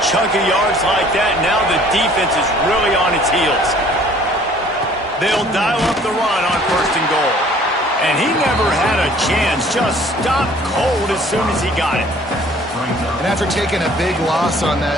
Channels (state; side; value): normal; both; correlation 0.55